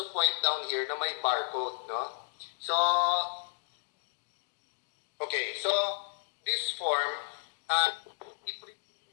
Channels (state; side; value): silent; right; digital silence